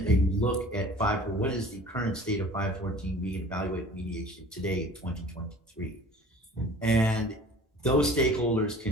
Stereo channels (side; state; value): both; normal; correlation 0.47